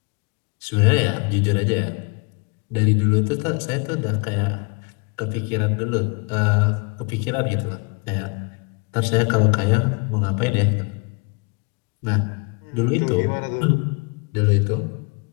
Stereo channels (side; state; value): right; quieter; 31.9 dB